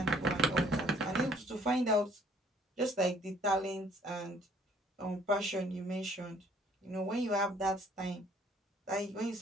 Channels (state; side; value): normal; both; correlation 0.60